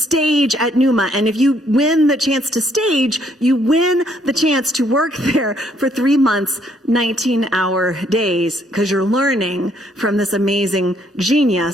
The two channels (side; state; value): both; normal; correlation 0.68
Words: at Numa, and if you win the chance to stage, you win the chance to work there for 3 months, 19-hour days, because you're learning from this amazing